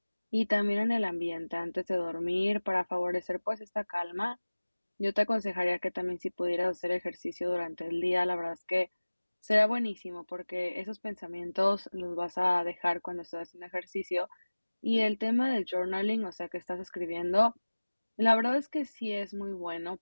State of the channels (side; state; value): both; inverted; correlation -1.00